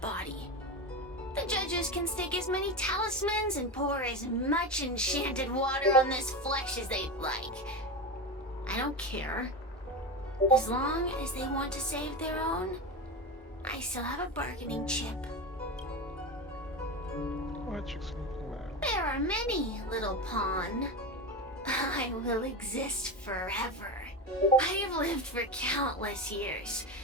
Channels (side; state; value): both; normal; correlation 0.20